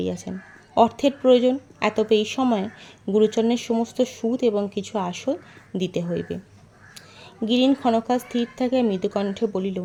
অর্থের প্রয়োজন, এতবে এই সময়ে গুরুচরণের সমস্ত সুদ এবং কিছু আসল দিতে হইবে। গিরিন ক্ষণকাল স্থির থাকিয়া মৃদুকণ্ঠে বলিল,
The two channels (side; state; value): both; identical; correlation 1.00